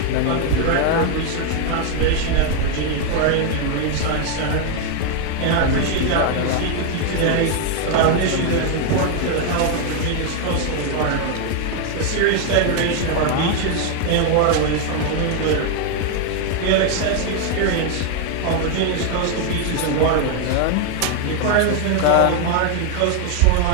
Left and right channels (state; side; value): different; both; correlation 0.01